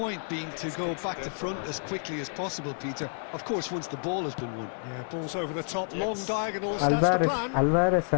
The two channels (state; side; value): silent; right; digital silence